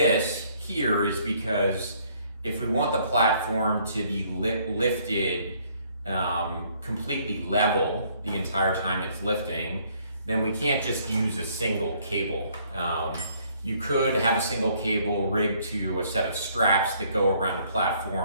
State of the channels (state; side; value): inverted; both; correlation -0.64